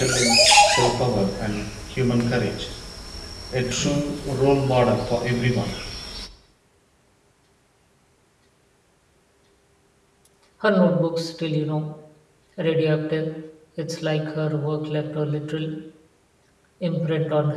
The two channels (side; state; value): both; identical; correlation 1.00